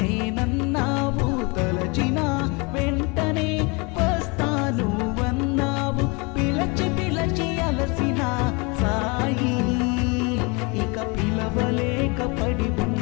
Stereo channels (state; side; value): quieter; right; 29.4 dB